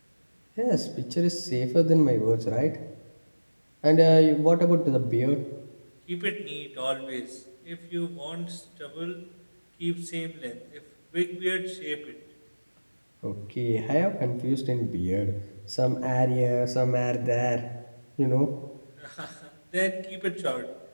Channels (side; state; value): both; inverted; correlation -1.00